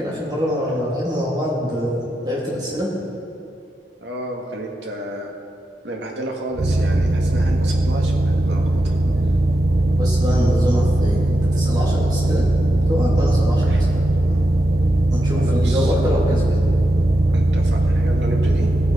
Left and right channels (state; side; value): normal; both; correlation 0.88